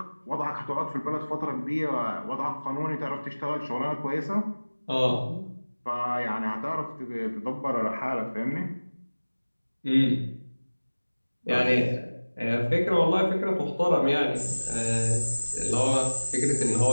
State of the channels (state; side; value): inverted; both; correlation -1.00